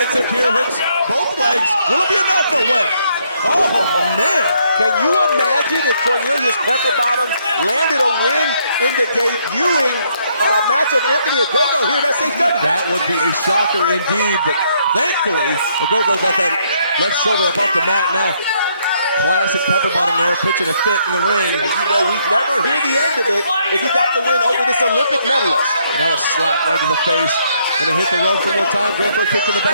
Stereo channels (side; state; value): both; inverted; correlation -0.71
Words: here? Hooks both legs. Will it be enough? No way. Oh, man. Can you imagine if Cornelius Pepper Bottom landed a win in the debuting match of Anthony Ogogo here at SHW? That would be a shocker indeed, but thankfully, Ogogo got that left shoulder up off the mat now. Classic Pepper Bottom there, pitching a fit in the ring. And you know we'd never hear the end of it if he got the win over this Olympic medalist. Now a slap right to the face. Gonna hit the rope one more time, going for a kick to the